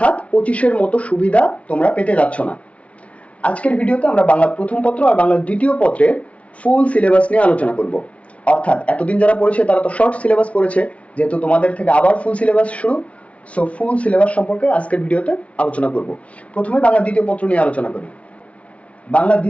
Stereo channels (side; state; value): right; late; 0.064 ms